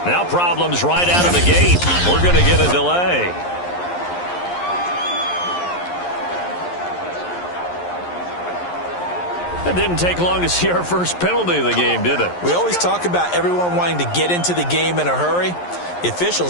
Now problems right out of the gate. We're going to get a delay. It didn't take long to see our first penalty of the game, did it? We always talk about everyone wanting to get into the game in a hurry. The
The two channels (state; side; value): late; right; 11 ms